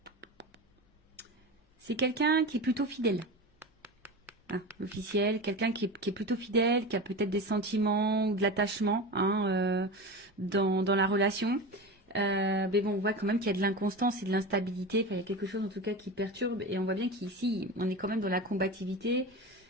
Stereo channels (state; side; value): normal; both; correlation 0.27